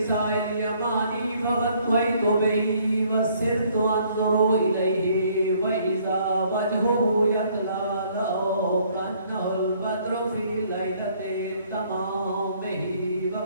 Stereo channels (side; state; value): both; inverted; correlation -0.63